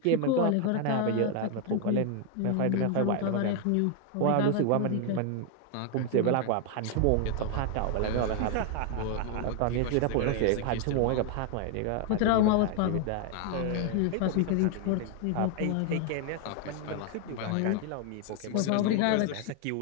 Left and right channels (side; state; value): both; different; correlation 0.00